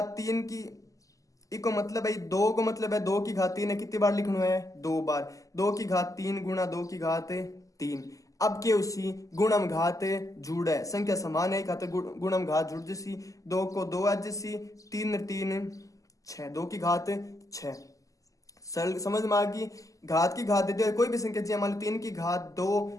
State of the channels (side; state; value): right; late; 0.16 ms